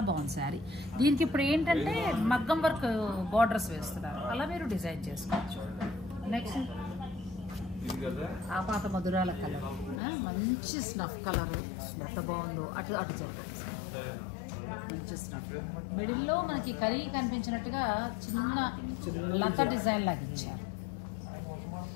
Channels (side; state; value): right; drops out; at 10.0 s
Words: బాగుంది శారీ. దీనికి ఇప్పుడు ఏంటంటే మగ్గం వర్క్ బార్డర్స్ వేస్తున్నారు, అలా మీరు డిజైన్ చేసుకోవచ్చు. నెక్స్ట్ ఆ పాత మధురాల కలర్, మంచి స్నఫ్ కలర్, ఎంత బాగుందో. అటు అటు చూడండి, మంచి స్నఫ్. మిడిల్లో మనకి కరీ కనిపించినట్టుగా చిన్న లత డిజైన్ లాగా ఇచ్చారు.